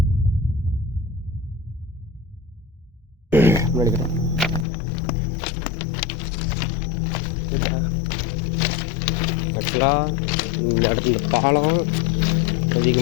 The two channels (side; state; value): right; drops out; at 4.7 s